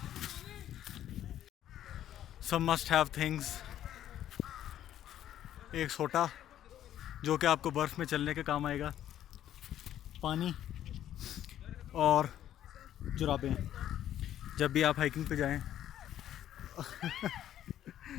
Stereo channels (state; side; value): quieter; right; 11.6 dB